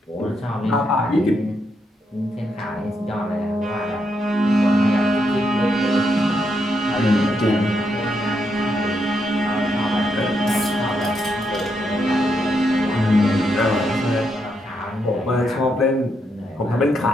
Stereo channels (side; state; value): both; normal; correlation 0.80